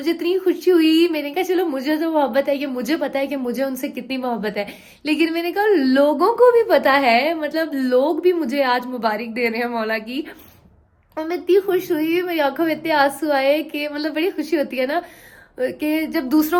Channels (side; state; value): both; identical; correlation 1.00